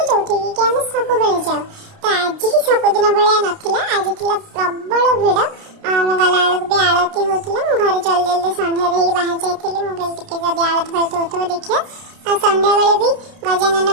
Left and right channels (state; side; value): late; left; 30 ms